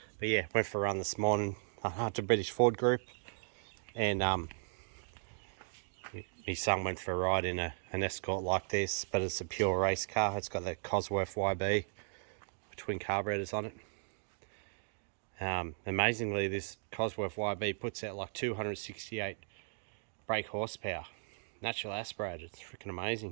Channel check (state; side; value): silent; left; digital silence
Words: but yeah, went for a run this morning to British Ford Group, and my son went for a ride in an Escort like this, but it's a pure race car. It's got the Cosworth YB twin carburetors on it. Amazingly, this Cosworth YB puts out like 268 brake horsepower. Natural aspirated. It's freaking